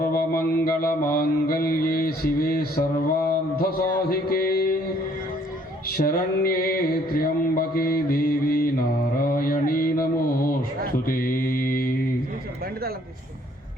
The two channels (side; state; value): both; normal; correlation 0.62